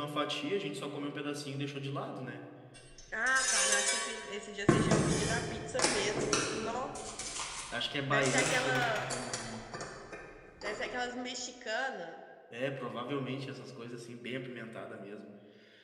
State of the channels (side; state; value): both; identical; correlation 1.00